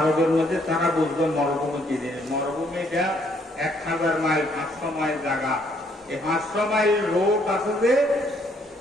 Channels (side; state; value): both; normal; correlation 0.68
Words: মধ্যে তারা বুঝবে মরুভূমি কি জিনিস। মরুভূমিটা 1000 মাইল 500 মাইল জায়গা। এই 500 মাইল রোড আছে যে